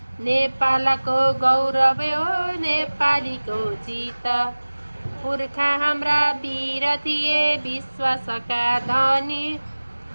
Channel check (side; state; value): both; inverted; correlation -1.00